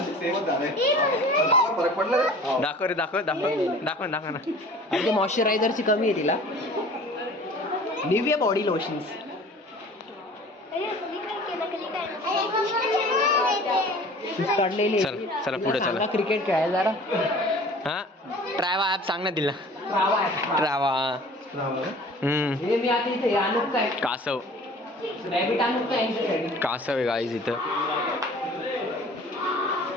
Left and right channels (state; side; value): normal; both; correlation 0.46